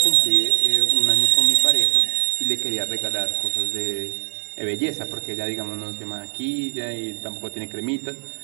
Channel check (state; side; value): silent; left; digital silence